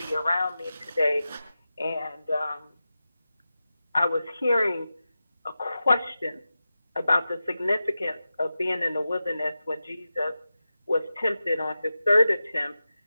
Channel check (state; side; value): inverted; both; correlation -0.93